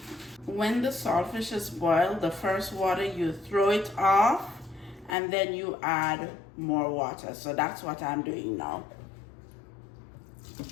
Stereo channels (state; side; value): drops out; right; at 5.2 s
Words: When the saltfish is boiled, the first water you throw it off and then you add more water. So that's what I'm doing now.